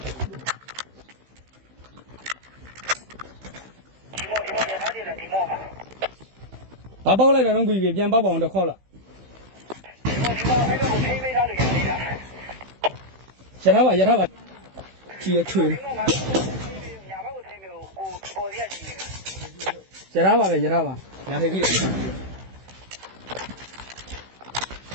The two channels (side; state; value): left; late; 16 ms